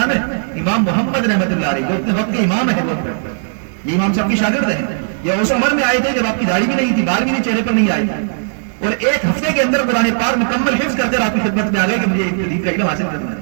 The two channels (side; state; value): left; silent; 69 dB below the other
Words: ہے؟ امام محمد رحمت اللہ علیہ، جو اپنے وقت کے امام ہے، یہ امام صاحب کی شاگرد ہیں، یہ اس عمر میں آئے تھے جب آپ کی داڑھی بھی نہیں تھی، بال بھی نہیں چہرے پر نہیں آئے تھے، اور ایک ہفتے کے اندر قرآن پاک مکمل حفظ کر کر آپ کی خدمت میں آ گئے کہ مجھے دین کا علم حاصل کرنا